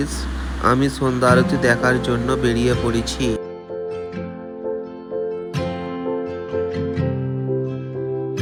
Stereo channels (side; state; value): both; identical; correlation 1.00